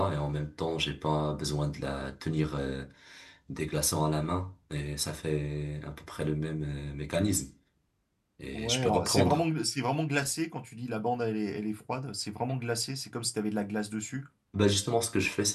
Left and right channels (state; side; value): identical; both; correlation 1.00